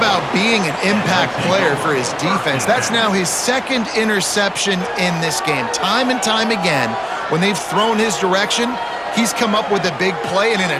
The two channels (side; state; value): both; identical; correlation 1.00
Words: being an impact player for his defense. That's now his 2nd interception in this game. Time and time again, when they've thrown his direction, he's come up with a big play. And in